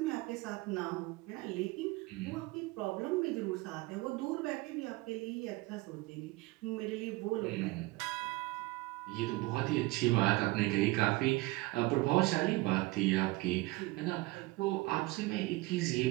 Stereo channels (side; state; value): left; quieter; 21.4 dB